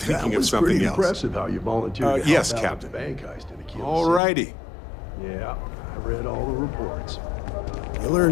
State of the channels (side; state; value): right; drops out; at 4.2 s